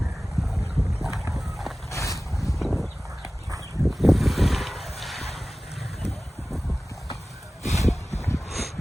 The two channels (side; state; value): both; normal; correlation 0.97